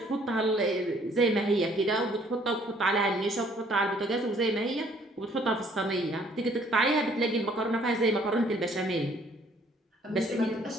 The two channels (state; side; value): normal; both; correlation 0.61